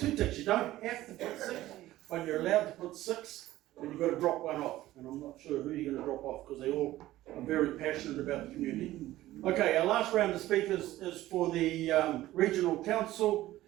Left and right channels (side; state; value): left; quieter; 15.5 dB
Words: ticks. You don't have to put 6, but you're allowed to put 6, and you've got to drop one off. And I'm not sure who you're going to drop off, because they all are very passionate about the community. Okay, our last round of speakers is for the Regional Council,